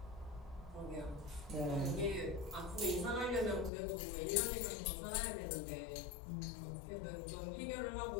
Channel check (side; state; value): right; drops out; at 3.7 s